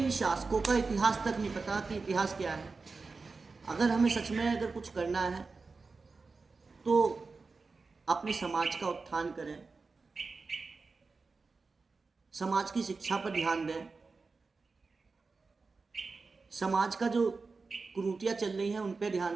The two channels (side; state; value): left; quieter; 4.2 dB